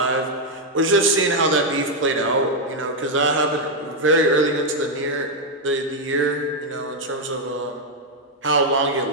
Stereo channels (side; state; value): both; normal; correlation 0.01